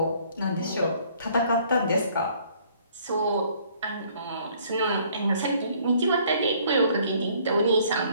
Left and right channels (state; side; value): inverted; both; correlation -0.61